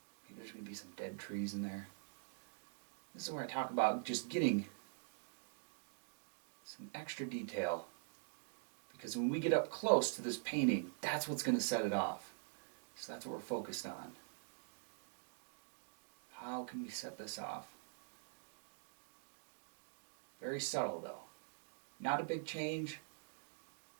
Maybe there's going to be some dead trees in there. This is where I talk about just getting some extra detail. Because when we get up close to this painting, that's what's going to set it off. So that's what we're focused on. How can we set this off? Very subtle though. Not a big change.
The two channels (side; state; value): left; silent; digital silence